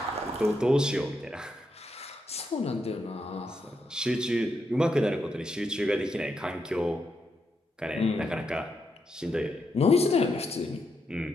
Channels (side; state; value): both; normal; correlation 0.82